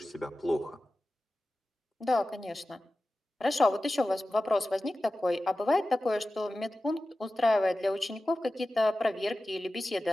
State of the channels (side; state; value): both; normal; correlation 0.95